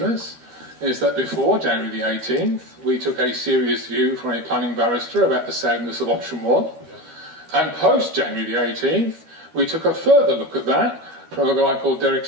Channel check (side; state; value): left; late; 13 ms